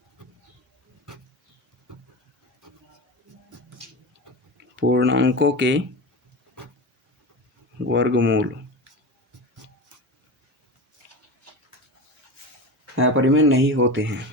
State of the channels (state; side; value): normal; both; correlation 0.26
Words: अपरिमेय नहीं होते हैं।